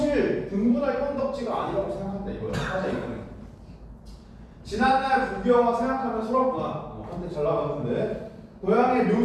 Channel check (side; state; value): both; identical; correlation 1.00